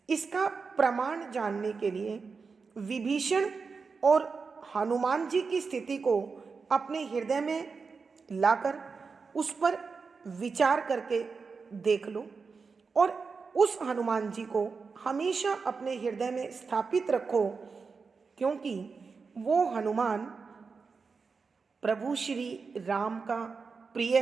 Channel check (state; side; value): quieter; left; 4.9 dB